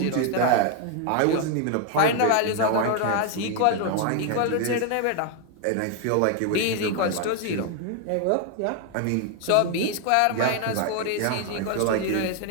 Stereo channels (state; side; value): different; both; correlation 0.00